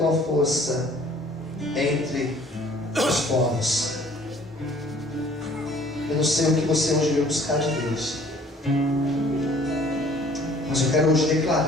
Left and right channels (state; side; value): normal; both; correlation 0.55